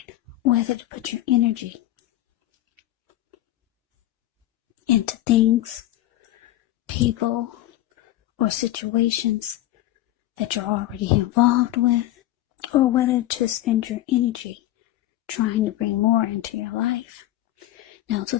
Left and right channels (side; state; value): right; quieter; 14.8 dB